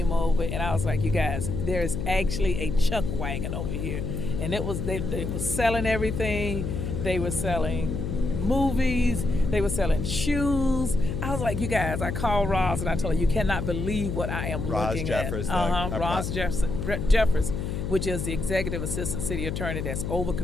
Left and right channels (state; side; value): noise; left; hum, 3 dB below the sound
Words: over and I was like, you guys, there's actually a chuck wagon over here, and it was they were selling everything. They were selling movies, they were selling shoes. I was like, you guys, I called Ross and I told her, you cannot believe what I am looking at. Ross Jeffers, which is the executive assistant city attorney that's over